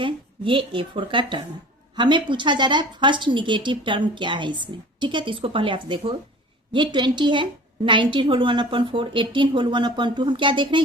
ये A4 का टर्म है। हमें पूछा जा रहा है फर्स्ट निगेटिव टर्म क्या है इसमें। ठीक है, तो इसको पहले आप देखो, ये 20 है, 19 होल 1/4, 18 होल 1/2। हम क्या देख रहे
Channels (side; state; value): both; normal; correlation 0.42